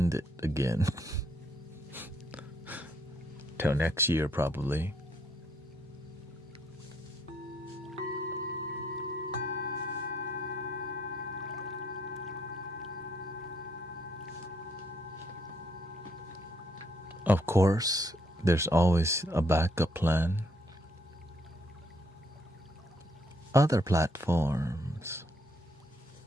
it again. Till next year probably. Of course, there's always a backup plan. Other platforms.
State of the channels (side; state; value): both; normal; correlation 0.71